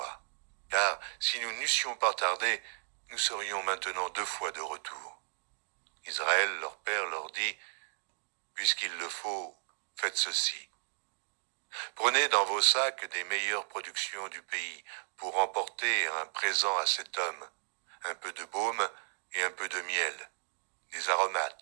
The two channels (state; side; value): silent; left; digital silence